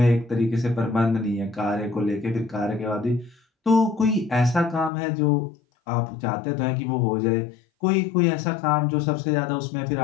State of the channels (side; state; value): right; drops out; at 4.9 s